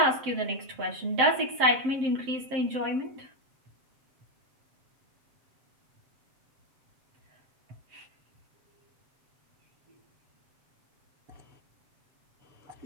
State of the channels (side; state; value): left; late; 7.6 ms